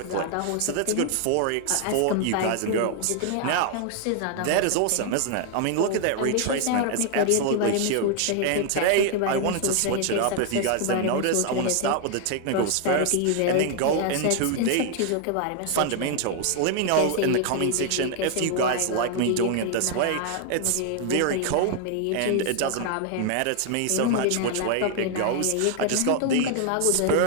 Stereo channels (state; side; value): different; both; correlation 0.00